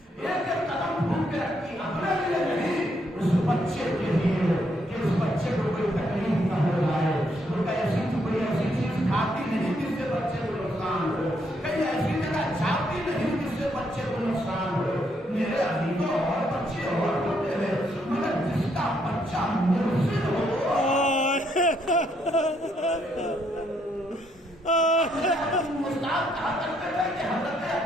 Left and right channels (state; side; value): normal; both; correlation 0.73